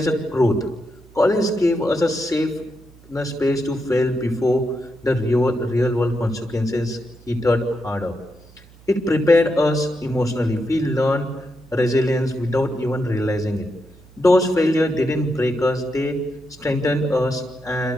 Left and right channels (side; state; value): right; noise; hum, 25 dB below the sound